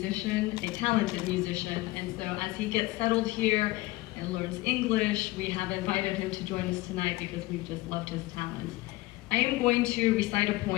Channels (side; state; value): right; quieter; 19.4 dB